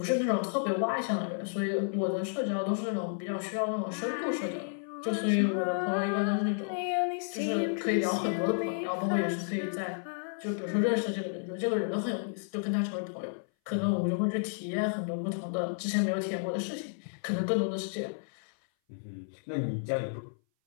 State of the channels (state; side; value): silent; right; 57 dB below the other